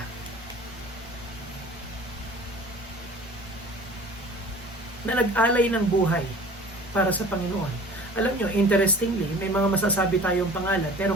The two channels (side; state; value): both; normal; correlation 0.44